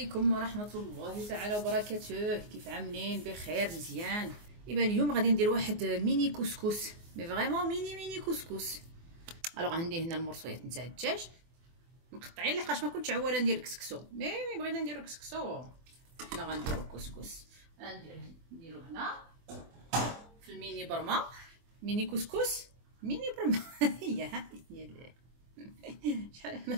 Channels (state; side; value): late; left; 24 ms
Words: ورحمة الله تعالى وبركاته. كيف عاملين؟ بخير مزيان. ايوا اليوم غادي ندير واحد ميني كسكس، مي فريمون ميني كسكس. الوغ عندي هنا المرصويات نتاع الدجاج مقطعين لحقاش ما كنتش عواله ندير كسكسو، مي بغينا نديرو كسكسو. حنا غنديرو كسكس، نديرو هنا في الميني برما، ميني كسكس ميني برما. هي شحال ما